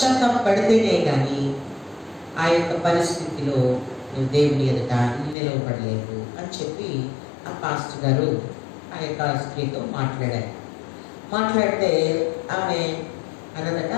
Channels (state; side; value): drops out; right; at 5.4 s